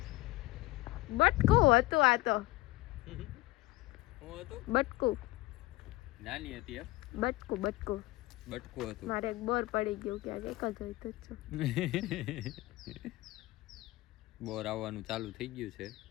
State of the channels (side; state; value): right; quieter; 19.4 dB